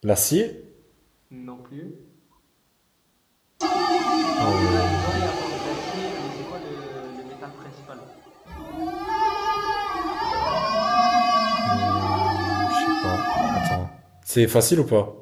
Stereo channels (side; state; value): both; identical; correlation 1.00